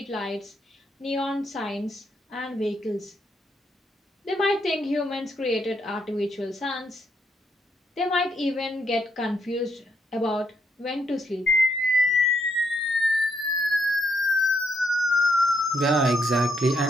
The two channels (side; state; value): both; normal; correlation 0.76